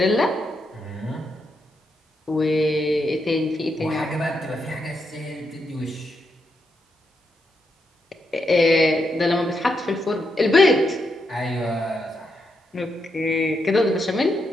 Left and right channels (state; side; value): normal; both; correlation 0.81